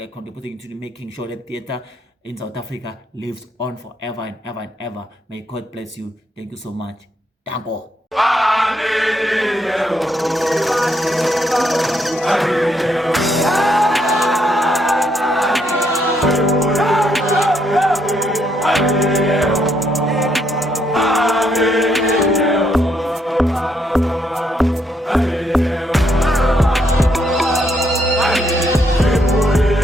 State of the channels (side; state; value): both; normal; correlation 0.74